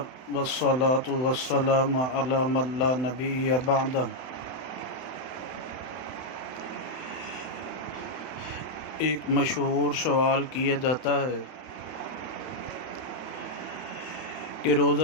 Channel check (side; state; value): right; late; 31 ms